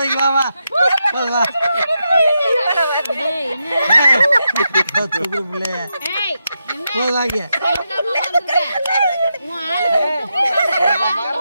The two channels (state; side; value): inverted; both; correlation -0.85